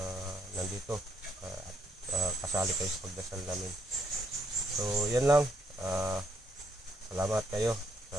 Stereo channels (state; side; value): normal; both; correlation 0.73